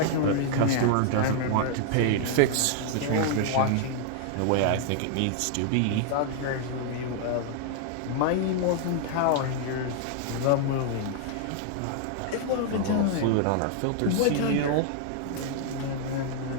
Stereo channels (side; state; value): both; different; correlation 0.00